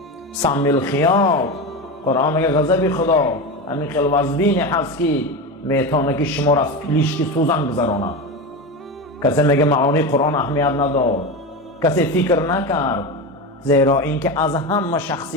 سمی الخیاط، قرآن میگه غضب خدا همین خیلی وزبینی هست که میتونه که شما را از پلیشکی سوزن گذرانه. کسی میگه معانی قرآن اهمیت نداد، کسی فکر نکرد، زیرا اینکه از همه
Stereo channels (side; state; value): both; normal; correlation 0.20